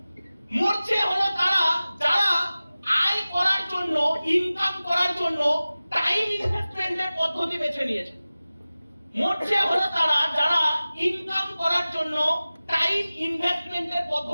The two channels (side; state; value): both; inverted; correlation -0.97